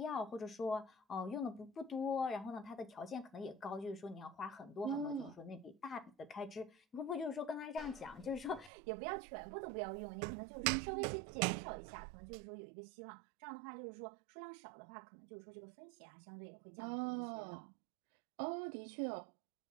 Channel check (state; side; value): drops out; left; at 8.7 s